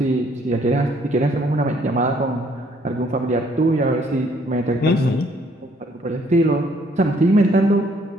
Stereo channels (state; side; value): normal; both; correlation 0.64